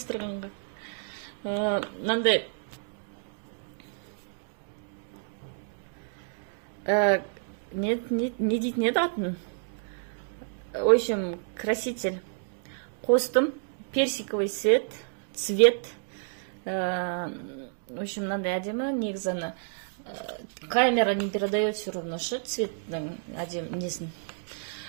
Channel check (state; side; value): silent; left; digital silence